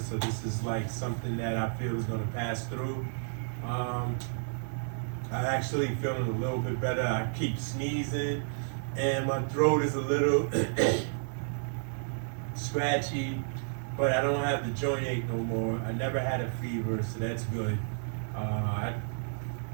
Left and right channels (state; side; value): silent; left; 57 dB below the other